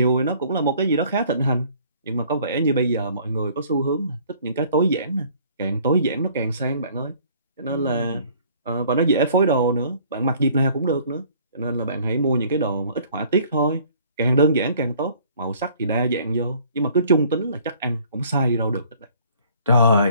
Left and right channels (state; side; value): inverted; both; correlation -0.56